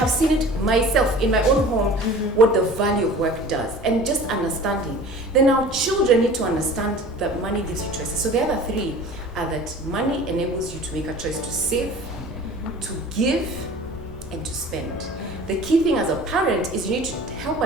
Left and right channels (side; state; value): both; normal; correlation 0.42